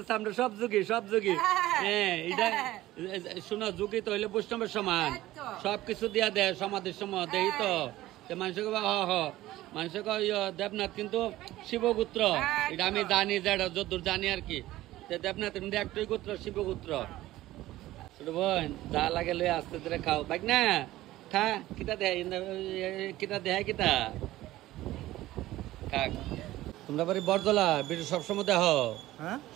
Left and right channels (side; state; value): left; quieter; 16.1 dB